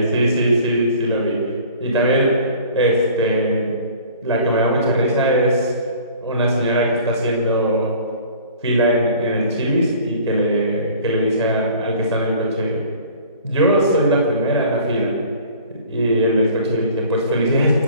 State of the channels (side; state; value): both; inverted; correlation -0.48